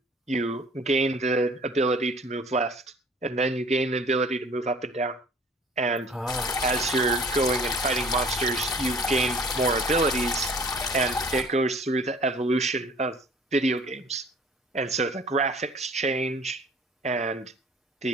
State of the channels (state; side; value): normal; both; correlation 0.50